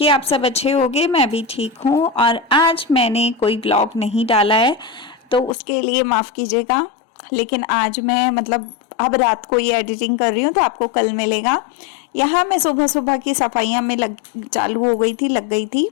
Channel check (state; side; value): drops out; right; at 5.5 s